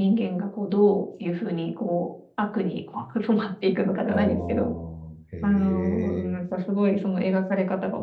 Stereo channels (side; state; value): both; identical; correlation 1.00